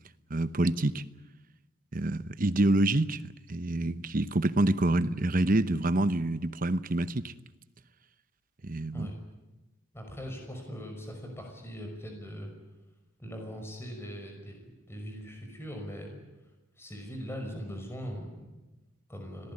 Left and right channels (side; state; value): both; normal; correlation 0.77